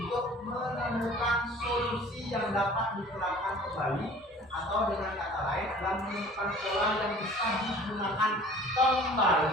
menemukan solusi yang dapat diterapkan kembali, atau dengan kata lain adalah menemukan pola yang bisa digunakan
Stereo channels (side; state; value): both; normal; correlation 0.47